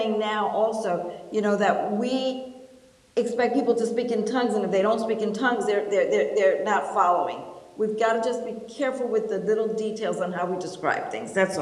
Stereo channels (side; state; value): both; identical; correlation 1.00